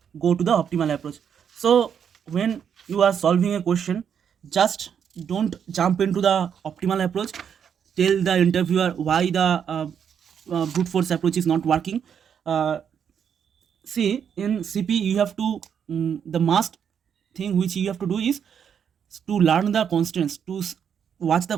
go to the optimal approach. So when you are solving a question, just don't jump into the optimal approach. Tell the interviewer why the brute force approach is not working. See, in CP you have to the must thing which you have to do is to learn the constants, to watch the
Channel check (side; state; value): left; quieter; 7.9 dB